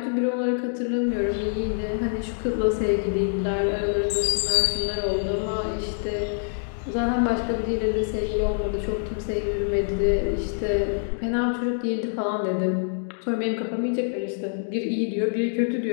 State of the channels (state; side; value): silent; right; digital silence